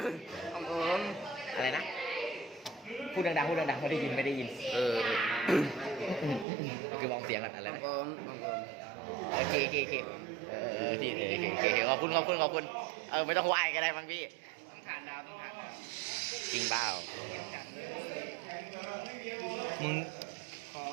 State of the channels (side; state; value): left; drops out; at 6.5 s